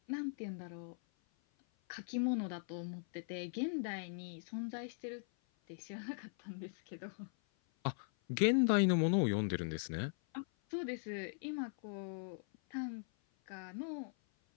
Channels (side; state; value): right; silent; 51 dB below the other